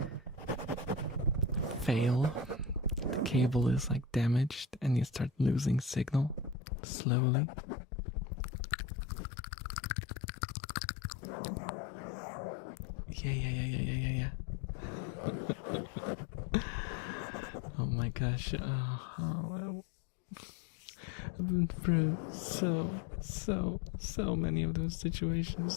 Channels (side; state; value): right; drops out; at 6.6 s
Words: fail, the cable is like damaged and you start losing signal slowly. Yeah. Oh my gosh, I've been through so many of those